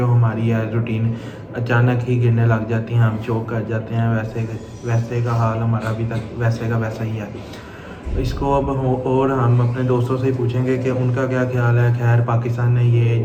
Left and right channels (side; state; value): both; identical; correlation 1.00